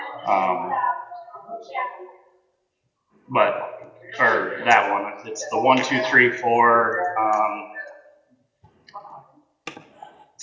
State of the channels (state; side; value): identical; both; correlation 1.00